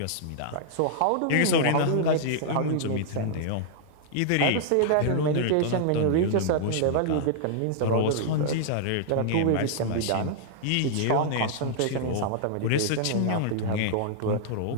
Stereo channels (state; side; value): different; both; correlation -0.01